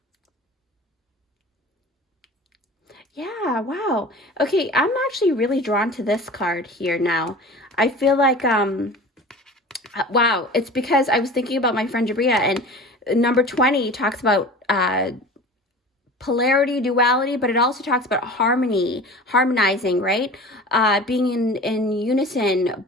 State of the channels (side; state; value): both; normal; correlation 0.38